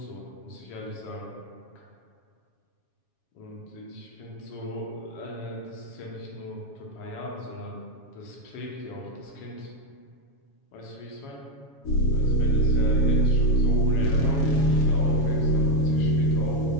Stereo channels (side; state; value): right; late; 7.3 ms